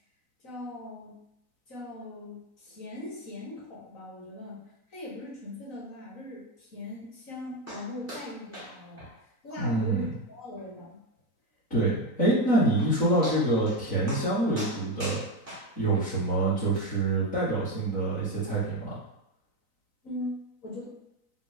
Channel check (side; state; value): right; late; 3.9 ms